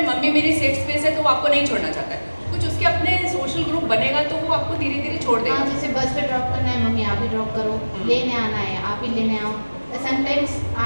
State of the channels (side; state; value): both; inverted; correlation -1.00